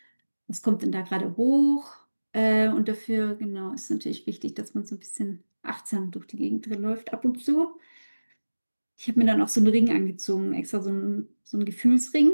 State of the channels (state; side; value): inverted; both; correlation -1.00